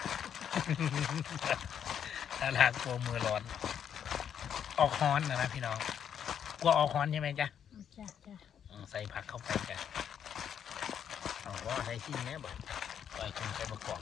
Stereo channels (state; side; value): quieter; right; 8.6 dB